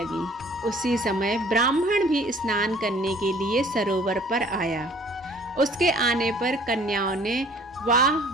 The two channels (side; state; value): both; normal; correlation 0.54